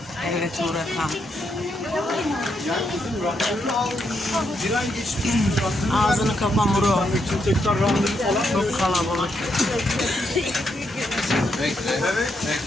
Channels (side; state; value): both; normal; correlation 0.79